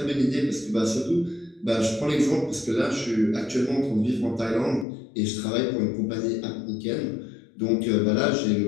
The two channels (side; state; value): right; drops out; at 4.9 s